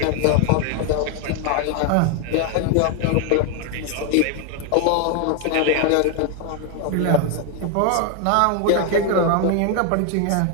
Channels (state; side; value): different; both; correlation 0.01